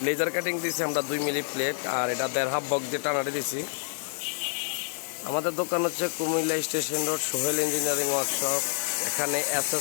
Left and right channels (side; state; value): right; silent; 57 dB below the other